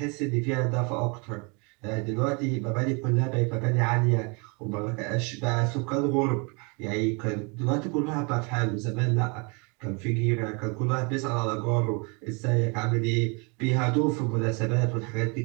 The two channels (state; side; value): quieter; left; 32.1 dB